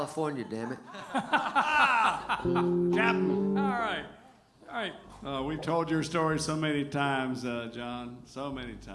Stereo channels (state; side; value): identical; both; correlation 1.00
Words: damn it. Captain. All right. All right. We've told your story so many times, John. So many